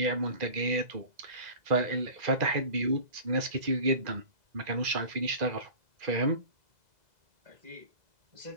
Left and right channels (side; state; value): left; late; 2.0 ms